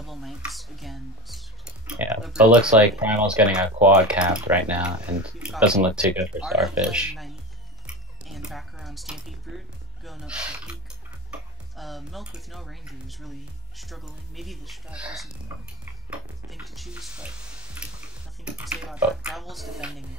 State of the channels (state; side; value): normal; both; correlation 0.23